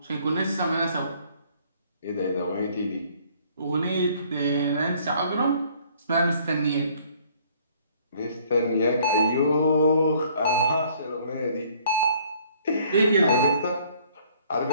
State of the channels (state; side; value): inverted; both; correlation -0.60